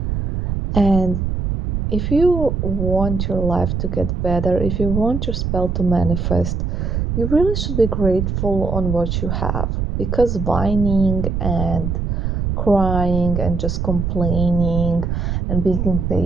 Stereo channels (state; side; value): noise; right; rumble, 1 dB below the sound